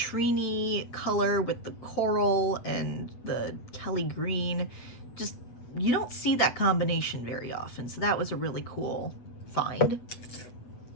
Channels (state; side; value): late; right; 8.1 ms